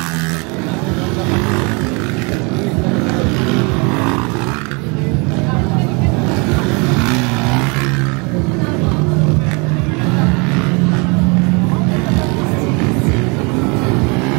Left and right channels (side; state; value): left; quieter; 30.8 dB